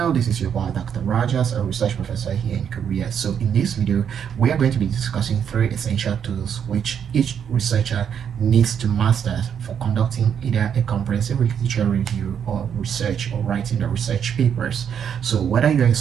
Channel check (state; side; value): quieter; left; 8.1 dB